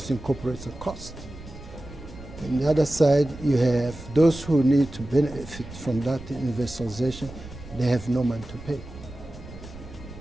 incorporates a cost. On the other side, you have those who need to benefit from that universalization. They have no money to pay.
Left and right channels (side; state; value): right; noise; rumble, 15 dB below the sound